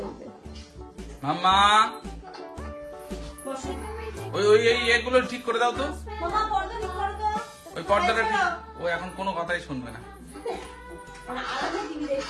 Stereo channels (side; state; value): both; identical; correlation 1.00